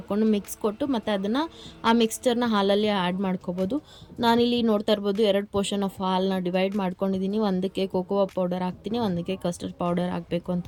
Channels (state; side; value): identical; both; correlation 1.00